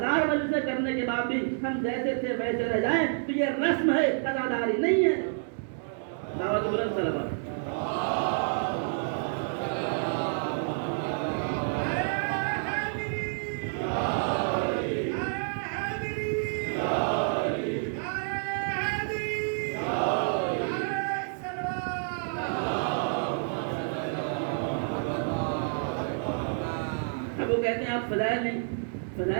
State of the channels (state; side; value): silent; left; digital silence